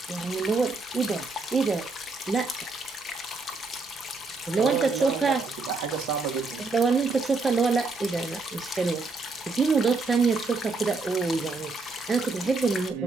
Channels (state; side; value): quieter; left; 3.8 dB